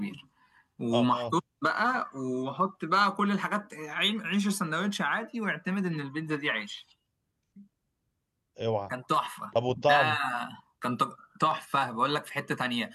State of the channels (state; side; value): identical; both; correlation 1.00